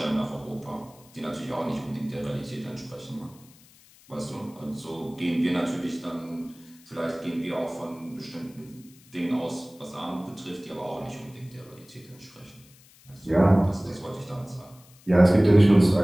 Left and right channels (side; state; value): left; noise; hiss, 26 dB below the sound